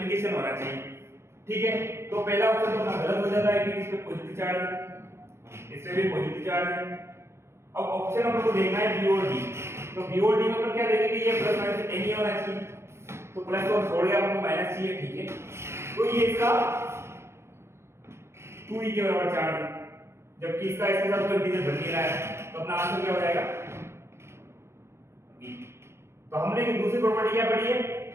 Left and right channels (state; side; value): late; left; 0.13 ms